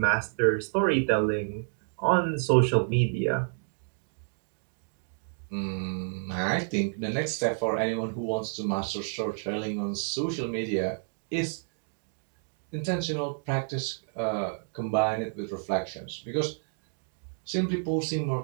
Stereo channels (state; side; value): silent; left; digital silence